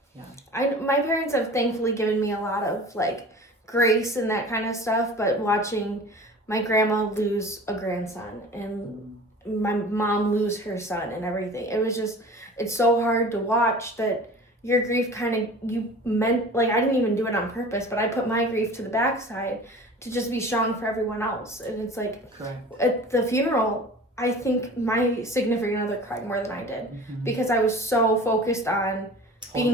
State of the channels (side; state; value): both; normal; correlation 0.41